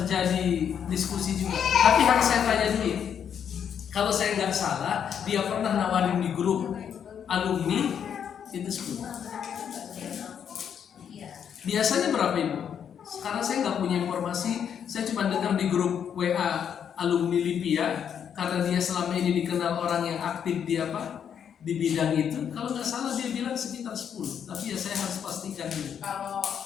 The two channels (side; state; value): right; quieter; 8.2 dB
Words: diskusi juga. Tapi harus saya tanya dulu. Kalau saya nggak salah, dia pernah nawarin di grup alumni itu 10. Biasanya berapa Ibu? Sekarang saya nggak punya informasi. Saya cuma dengar di grup WA alumni Lipia. Karena dia selama ini dikenal orang yang aktif di bidang itu. Kalau nggak salah dia bilang sekitar 10. Tapi ya saya harus pastikan dulu. Kalau